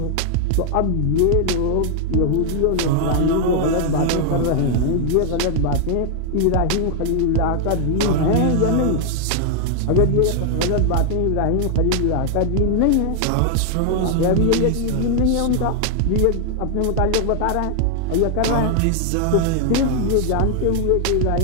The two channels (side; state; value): both; different; correlation 0.00